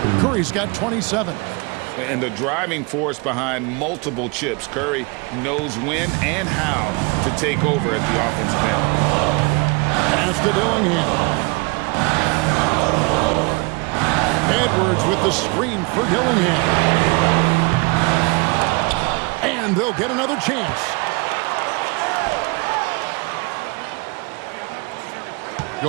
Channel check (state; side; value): quieter; left; 29.7 dB